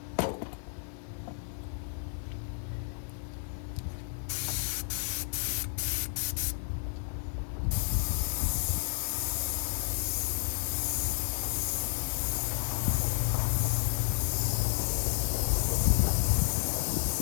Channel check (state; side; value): silent; right; 57 dB below the other